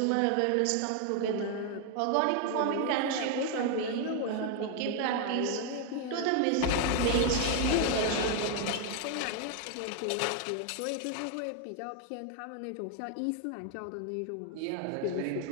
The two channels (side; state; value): both; different; correlation 0.00